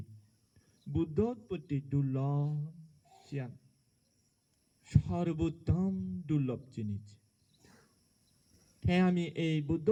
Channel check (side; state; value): both; identical; correlation 1.00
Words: বুদ্ধ উৎপত্তি দুর্লভ সিয়ান সর্বোত্তম দুর্লভ জিনিস হ্যাঁ আমি এই বুদ্ধ